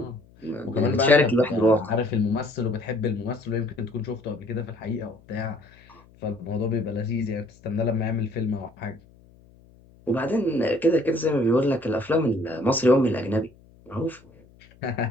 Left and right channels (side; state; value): left; noise; hum, 27 dB below the sound